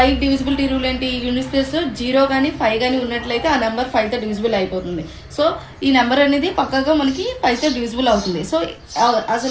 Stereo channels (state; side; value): identical; both; correlation 1.00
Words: డివిజిబిలిటీ రూల్ ఏంటి? యూనిట్స్ ప్లేస్లో 0 కానీ 5 కానీ ఉన్నట్లయితే ఆ నెంబర్ 5తో డివిజిబుల్ అయిపోతుంది. సో ఈ నెంబర్ అనేది పక్కగా మనకి 5తో డివిజిబుల్ అవుతుంది. సో